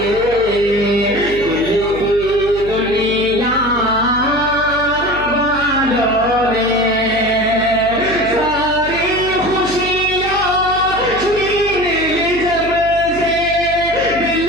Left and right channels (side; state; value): right; noise; hum, 13 dB below the sound